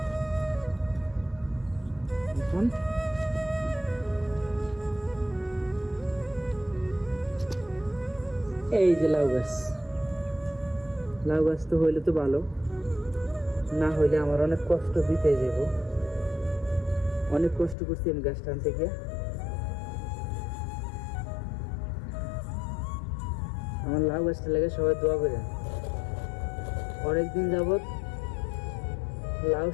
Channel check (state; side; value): drops out; right; at 17.8 s